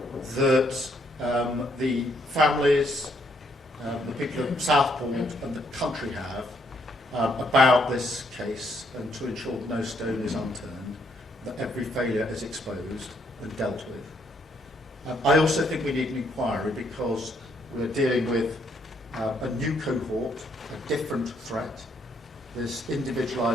that the families, the people of Southport and the country have about this case, and to ensure that no stone is unturned, that every failure is exposed and dealt with. I also think we need an inquiry because we're dealing with a new cohort, a different threat, this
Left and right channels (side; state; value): both; normal; correlation 0.71